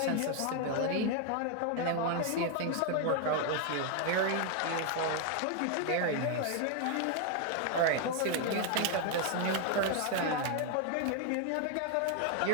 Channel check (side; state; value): both; different; correlation 0.00